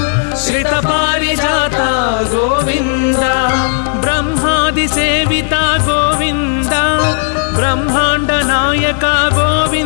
श्रित पारिजात गोविंद ब्रह्मादि सेविता गोविंद ब्रह्मांड नायक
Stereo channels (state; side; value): silent; right; digital silence